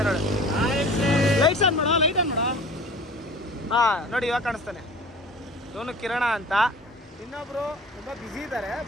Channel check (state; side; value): normal; both; correlation 0.42